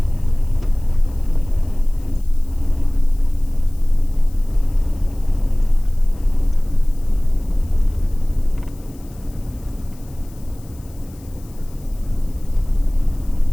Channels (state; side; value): noise; left; hiss, 27 dB below the sound